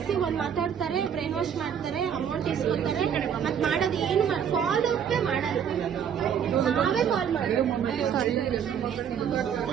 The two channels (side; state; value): left; quieter; 8.2 dB